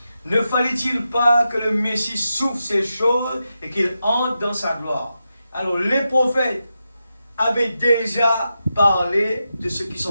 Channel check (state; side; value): inverted; both; correlation -0.88